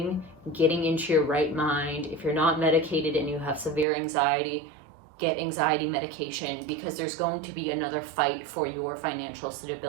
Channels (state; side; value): drops out; left; at 3.9 s